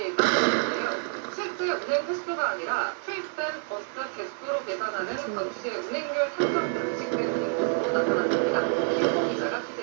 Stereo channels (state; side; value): silent; left; 60 dB below the other